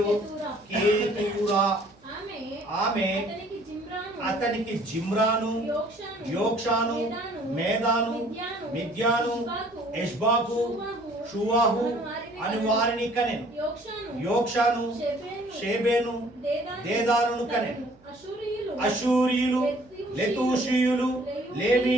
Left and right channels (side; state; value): right; noise; hum, 30 dB below the sound